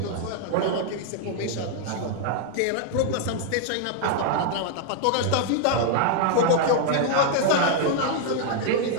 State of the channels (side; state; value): both; different; correlation 0.00